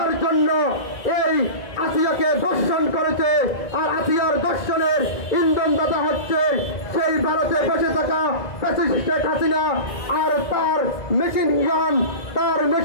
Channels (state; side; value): late; right; 2.0 ms